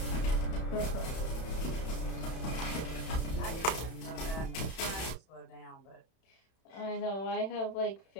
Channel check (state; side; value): late; right; 31 ms